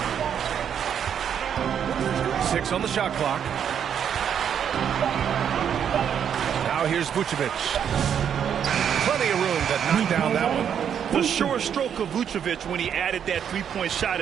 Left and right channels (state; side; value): quieter; left; 8.4 dB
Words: 6 on the shot clock. Now here's Vucevic. Plenty of room to knock down that one. The sure stroke of Vucevic when he added that three-point shot